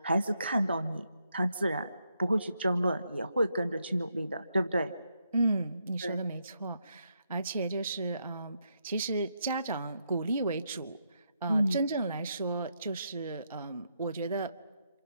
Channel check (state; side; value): inverted; both; correlation -0.79